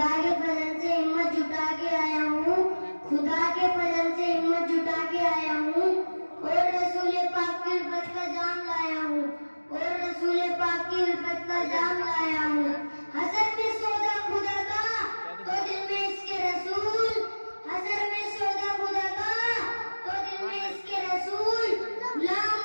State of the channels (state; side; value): inverted; both; correlation -1.00